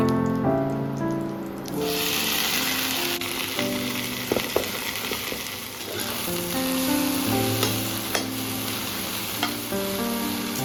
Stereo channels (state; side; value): identical; both; correlation 1.00